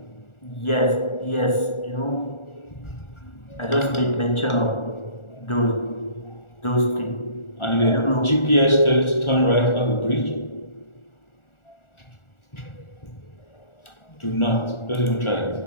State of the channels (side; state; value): right; late; 1.4 ms